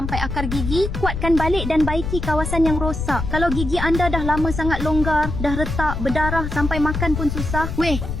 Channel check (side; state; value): left; noise; rumble, 4 dB below the sound